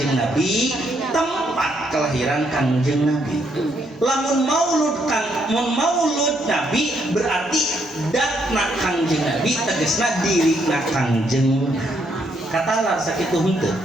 Nabi, tempat kelahiran Kangjeng Nabi. Lamun maulud Nabi berarti datna Kangjeng Nabi tegesna dirina Kangjeng katalar sakitu henteu.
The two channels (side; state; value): both; normal; correlation 0.73